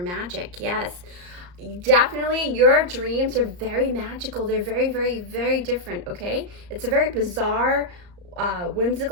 yes. Definitely, your dreams are very magical. They're very, very, very different, okay? It's a very bizarre,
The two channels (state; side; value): late; left; 34 ms